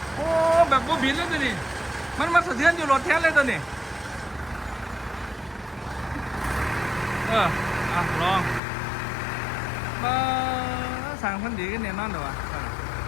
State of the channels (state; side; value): drops out; right; at 8.6 s